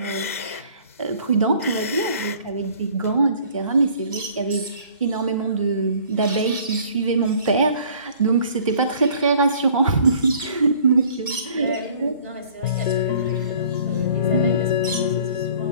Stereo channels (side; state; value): both; inverted; correlation -0.53